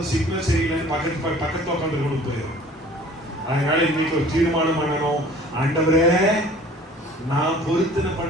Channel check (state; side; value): normal; both; correlation 0.49